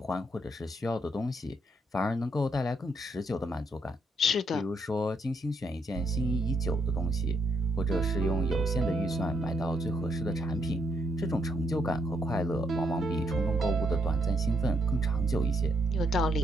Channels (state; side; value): normal; both; correlation 0.74